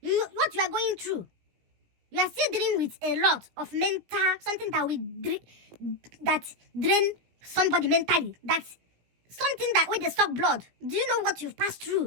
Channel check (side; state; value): left; late; 17 ms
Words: you are going through, you are still dealing with a lot of mental, something that will drain somebody mentally. That's something that when they suck blood. Do you know what you've passed